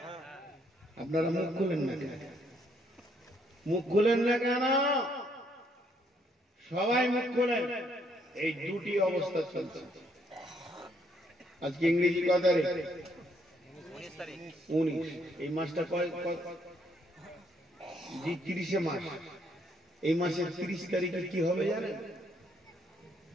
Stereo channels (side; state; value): both; normal; correlation 0.70